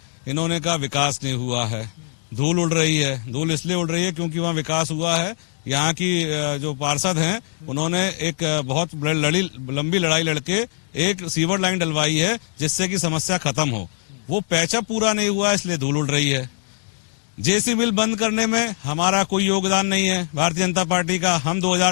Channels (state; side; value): silent; right; digital silence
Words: इन्होंने कहा विकास नहीं हुआ है, धूल उड़ रही है। धूल इसलिए उड़ रही है क्योंकि वहाँ विकास हुआ है। यहाँ की जो पार्षद हैं उन्होंने एक बहुत लंबी लड़ाई लड़के एक सीवर लाइन डलवाई है जिससे कि समस्या खत्म हो। वो पैचा पूरा नहीं हुआ, इसलिए धूल उड़ रही है। जेसी मिल बंद करने में हमारा कोई योगदान नहीं है भारतीय जनता पार्टी का। हम